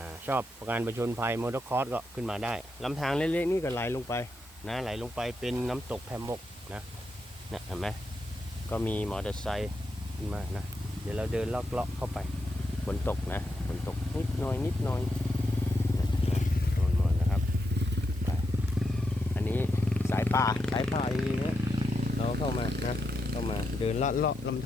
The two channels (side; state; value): both; normal; correlation 0.84